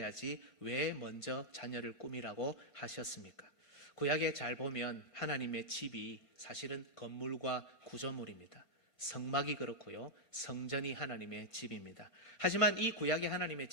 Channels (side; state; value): right; late; 1.5 ms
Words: 왜 먼저 자녀를 꾸미라고 하셨습니까? 구약에 잘 보면 하나님의 집이 사실은 건물과 구조물입니다. 성막이 그렇고요, 성전이 하나님의 집입니다. 하지만 이 구약의 하나님의